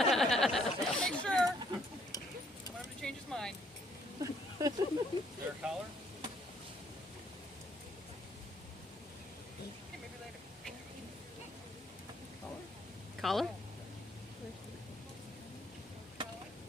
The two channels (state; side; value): normal; both; correlation 0.66